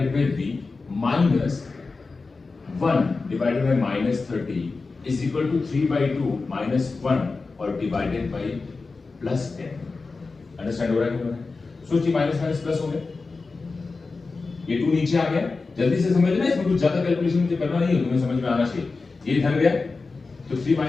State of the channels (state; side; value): quieter; right; 4.0 dB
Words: by v minus 1 divided by minus 30 is equal to 3/2 minus 1 और डिवाइडेड बाय प्लस 10। अंडरस्टैंड हो रहा है कि नहीं? सोचिए माइनस माइनस प्लस हो गया, ये 2 नीचे आ गया, जल्दी से समझ लेना, इसमें कुछ ज्यादा कैलकुलेशन मुझे करना नहीं है, तुम्हें समझ में आना चाहिए। ये इधर गया तो 3